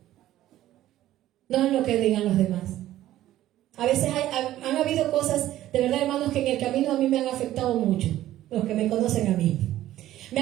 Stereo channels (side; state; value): left; quieter; 13.8 dB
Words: No en lo que digan los demás. A veces han habido cosas, de verdad, hermanos, que en el camino a mí me han afectado mucho. Los que me conocen a mí. Me